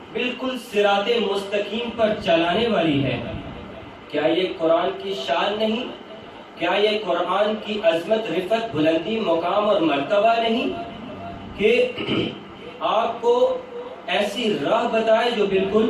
بالکل صراط مستقیم پر چلانے والی ہے۔ کیا یہ قرآن کی شان نہیں؟ کیا یہ قرآن کی عظمت، رفعت، بلندی، مقام اور مرتبہ نہیں کہ آپ کو ایسی راہ بتائے جو بالکل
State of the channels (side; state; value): both; identical; correlation 1.00